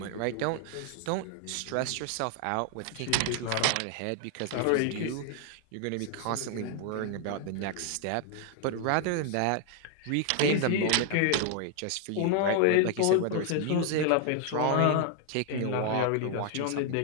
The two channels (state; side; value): different; both; correlation 0.00